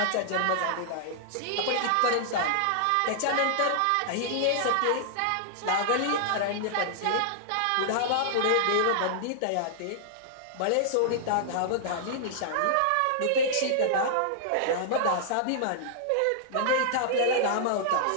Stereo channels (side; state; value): both; different; correlation -0.01